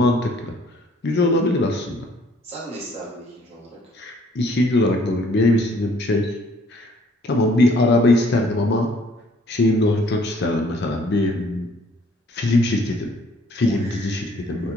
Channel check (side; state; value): both; normal; correlation 0.60